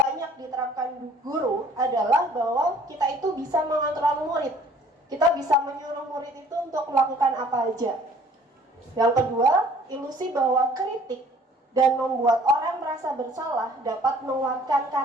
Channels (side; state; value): both; normal; correlation 0.55